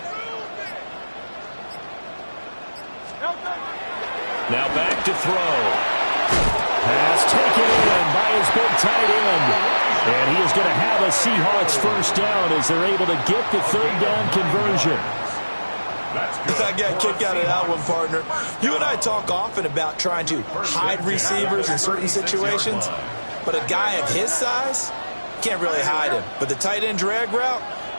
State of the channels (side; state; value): both; inverted; correlation -1.00